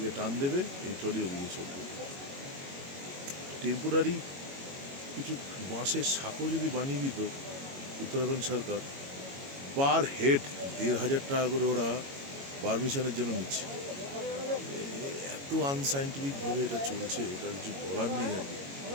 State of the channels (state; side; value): late; left; 22 ms